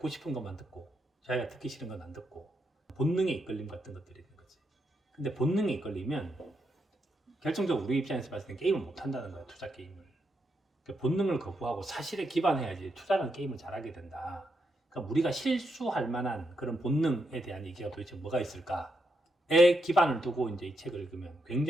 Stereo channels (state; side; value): normal; both; correlation 0.82